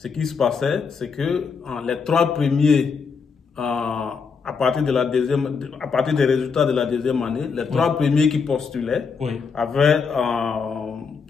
qui se passait, c'est que les 3 premiers, à partir des résultats de la 2e année, les 3 premiers qui postulaient avaient,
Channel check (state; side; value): quieter; right; 5.5 dB